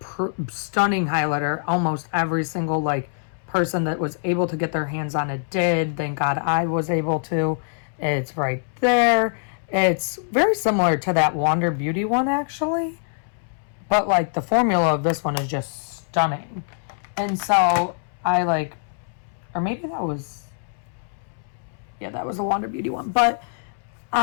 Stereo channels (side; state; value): right; silent; 63 dB below the other